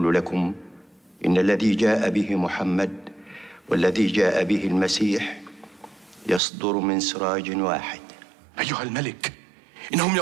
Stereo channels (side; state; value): left; drops out; at 6.4 s